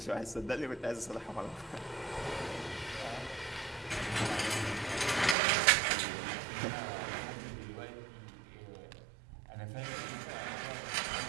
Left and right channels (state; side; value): drops out; left; at 5.4 s